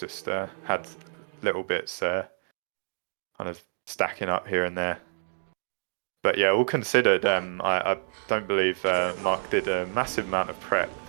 had little bits kind of stacking up here and there. But yeah, all considered, I don't believe Mark did a massive amount of prep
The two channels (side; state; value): left; silent; digital silence